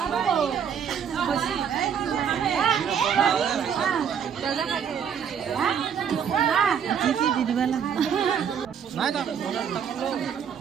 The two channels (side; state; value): left; quieter; 7.8 dB